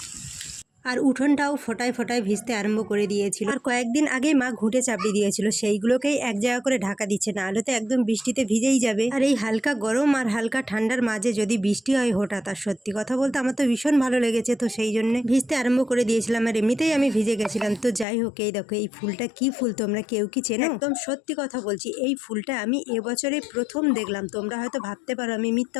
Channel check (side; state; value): right; drops out; at 18.1 s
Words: আর উঠোনটাও ফোটায় ফোটায় ভিজতে আরম্ভ করে দিয়েছিল। আর কয়েকদিন আগেই মা ঘুঁটে চাপড়ি দিয়েছিল, সেইগুলোকেই এক জায়গা করে ঢাকা দিচ্ছে, না হলে তো একদম বৃষ্টিতে ভিজেই যাবে। আর এই হালকা গরম আর হালকা ঠান্ডার মাঝে যদি বৃষ্টি হয় হঠাৎ, আর সত্যি কথা বলতে আমার তো ভীষণ ভালো লেগেছে, তো সেই জন্য ভিজতে আরম্ভ করে দিয়েছিলাম। আর এমনিতেই আমি ভিজে গেছিলাম। তো যাই হোক, এই দেখো এই ফুলটা কি ফুল তোমরা কেউ কি চেনো? একদম সত্যি কথা বলছি, এই ফুলটা আমি এবছরে প্রথম দেখলাম। তোমরা হয়তো ভাবতে পারো আমি মিথ্যা